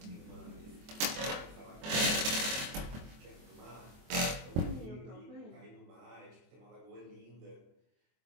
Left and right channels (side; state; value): left; late; 24 ms